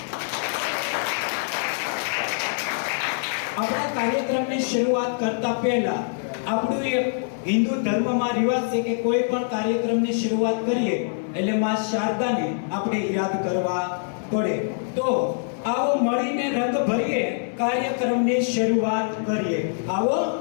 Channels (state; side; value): silent; right; digital silence